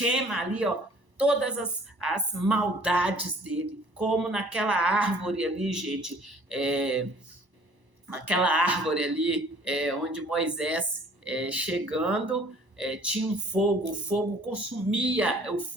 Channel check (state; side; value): late; left; 1.0 ms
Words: ali, ó, todas as maldades dele, como naquela árvore ali, gente, naquela árvore ali, onde Moisés, chegando, tinha um fogo, o fogo consumia, o